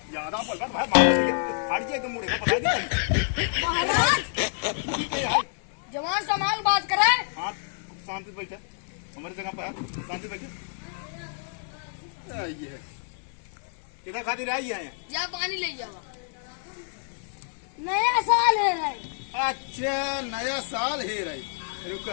ज्यादा बोल भाई फाड़ के मुड़े का पता नहीं। महाराज जवान संभाल बात करे। हाँ शांति से बैठे, हमारी जगह पर शांति से बैठे। ये है किधर खातिर आई है? जा पानी ले जाओ। नया साल है भाई। अच्छा नया साल है रही,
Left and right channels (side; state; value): right; silent; 59 dB below the other